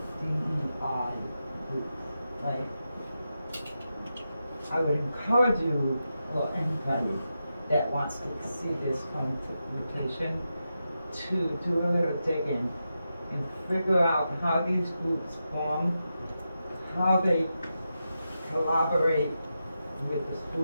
DEI groups. Like, I would encourage you, or anybody that wants to see this home rotation, to do a little digging and figure out how these groups form, how they collaborate with the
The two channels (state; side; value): inverted; both; correlation -0.88